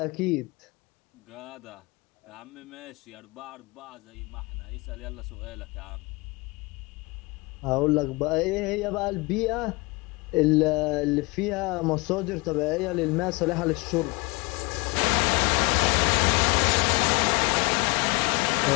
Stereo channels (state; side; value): quieter; right; 26.2 dB